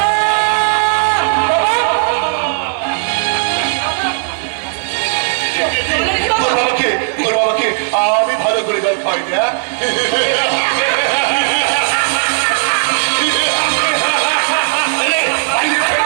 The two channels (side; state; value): left; silent; digital silence